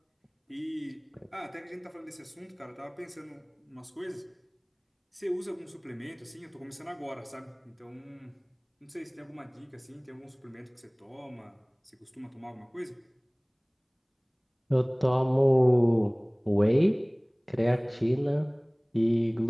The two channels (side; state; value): both; identical; correlation 1.00